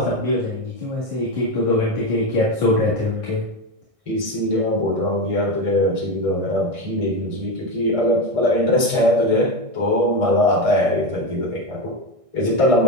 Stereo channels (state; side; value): late; left; 1.6 ms